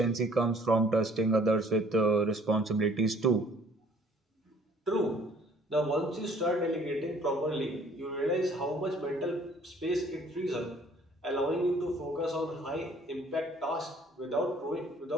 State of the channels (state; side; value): normal; both; correlation 0.57